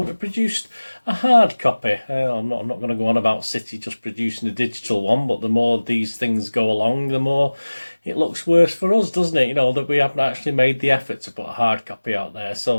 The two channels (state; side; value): inverted; both; correlation -1.00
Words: have produced a hard copy. I'm not going to go on about City just producing a digital one, but the more these things go along, the more it looks worse for us, doesn't it? You know, that we haven't actually made the effort to put a hard copy out there.